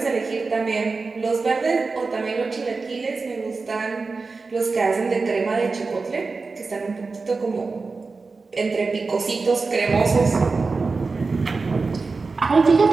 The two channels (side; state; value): left; quieter; 4.1 dB